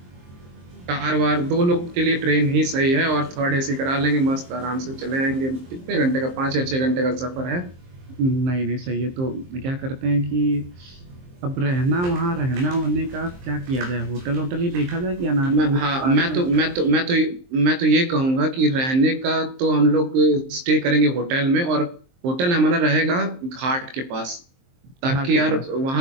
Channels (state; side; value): late; left; 23 ms